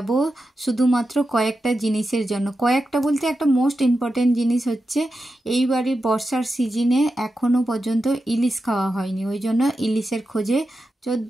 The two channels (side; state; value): both; normal; correlation 0.90